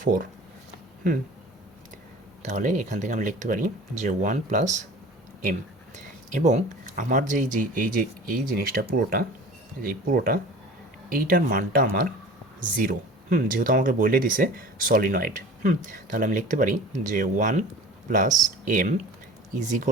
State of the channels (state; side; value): normal; both; correlation 0.41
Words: 4। তাহলে এখান থেকে আমি লিখতে পারি যে 1 প্লাস এম, এবং আমার যে এই জিনিসটা পুরোটা, এইটার মানটা আমার 0। যেহেতু আমাকে বলে দিছে সলিনয়েড, তাহলে আমি লিখতে পারি যে 1 plus M is